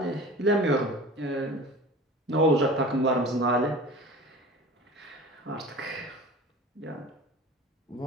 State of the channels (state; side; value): normal; both; correlation 0.39